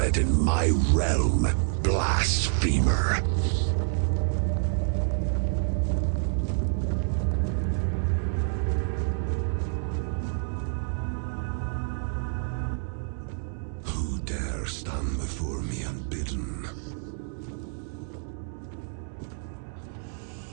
in my realm, blasphemer? Who dare stand before me unbidden?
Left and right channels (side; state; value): left; silent; digital silence